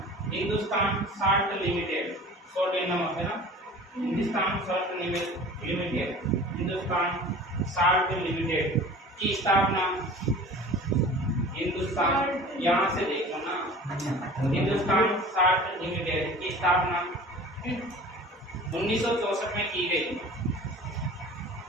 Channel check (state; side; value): normal; both; correlation 0.41